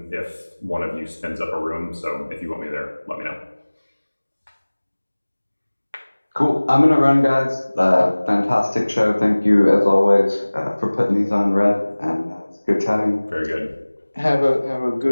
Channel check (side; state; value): both; inverted; correlation -1.00